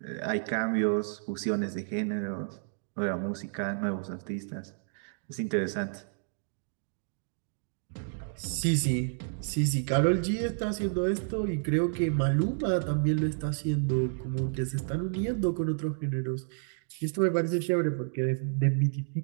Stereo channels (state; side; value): silent; left; digital silence